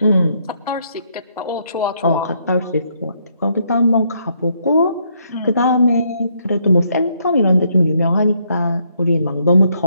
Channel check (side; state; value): both; inverted; correlation -0.73